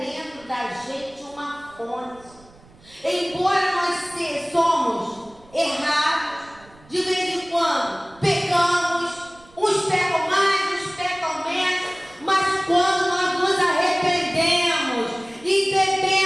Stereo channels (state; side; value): noise; right; rumble, 26 dB below the sound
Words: da gente uma fonte. Embora nós somos errados, de vez em quando pecamos, uns pecam mais, uns pecam menos, mas quando nós nos arrependemos e